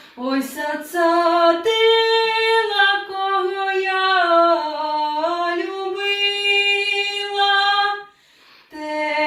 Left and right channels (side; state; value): both; identical; correlation 1.00